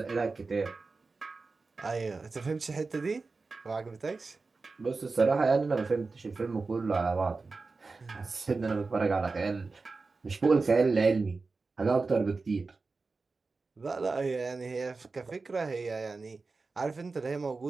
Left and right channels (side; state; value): left; quieter; 4.0 dB